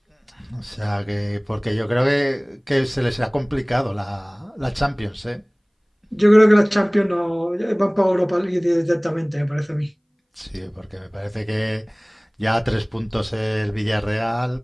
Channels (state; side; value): identical; both; correlation 1.00